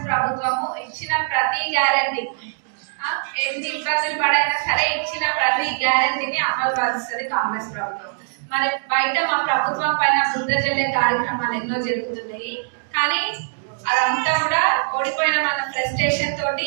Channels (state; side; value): silent; left; digital silence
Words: ప్రభుత్వము ఇచ్చిన ప్రతి గ్యారంటీ, ఎన్ని ఇబ్బందులు పడైనా సరే ఇచ్చిన ప్రతి గ్యారంటీని అమలు పరుస్తుంది కాంగ్రెస్ ప్రభుత్వం. మరి బయట మా ప్రభుత్వం పైన బురద జల్లే కార్యక్రమాలు ఎన్నో జరుగుతున్నాయి. కానీ అదంతా కూడా ఓడిపోయిన మన ఫ్రస్ట్రేషన్